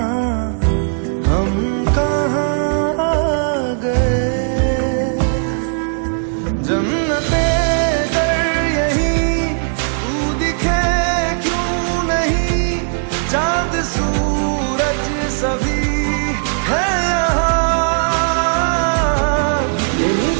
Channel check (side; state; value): left; silent; digital silence